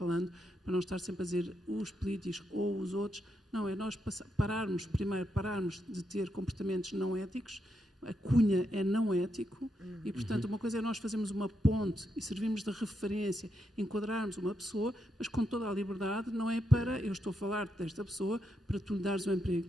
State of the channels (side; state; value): both; normal; correlation 0.82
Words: para não estar sempre a dizer os políticos ou os outros. Não, é nós pararmos de ter comportamentos não éticos. A cunha é não ético e, portanto, uma coisa é nós fazermos uma ponte e servirmos de referência, enquadrarmos uma pessoa, mas com toda a liberdade, não é para eu estou a falar desta pessoa para tu lhe dares um emprego.